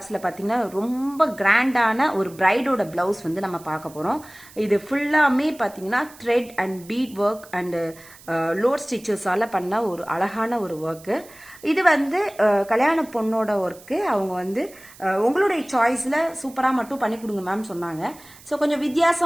பாத்தீங்கன்னா ரொம்ப கிராண்டான ஒரு பிரைடோட பிளவுஸ் வந்து நம்ம பார்க்க போறோம். இது ஃபுல்லாமே பாத்தீங்கன்னா thread and bead work and load stitches ஆல பண்ண ஒரு அழகான ஒரு work. இது வந்து கல்யாண பொண்ணோட ஒர்க். அவங்க வந்து உங்களுடைய சாய்ஸ்ல சூப்பரா மட்டும் பண்ணி கொடுங்க மேம் சொன்னாங்க. ஸோ கொஞ்சம்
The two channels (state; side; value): noise; right; hiss, 22 dB below the sound